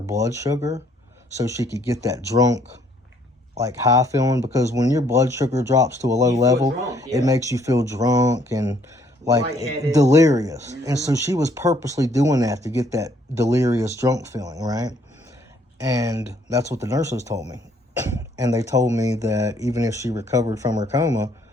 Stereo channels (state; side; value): normal; both; correlation 0.65